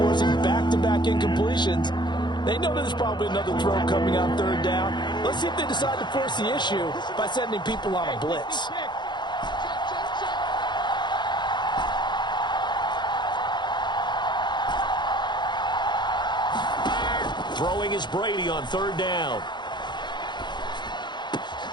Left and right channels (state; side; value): late; right; 0.21 ms